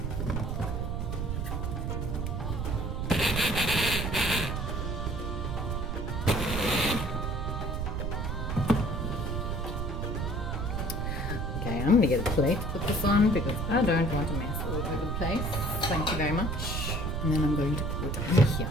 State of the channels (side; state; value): right; noise; rumble, 2 dB below the sound